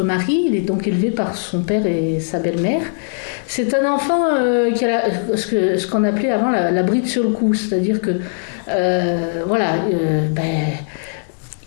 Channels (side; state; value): right; silent; digital silence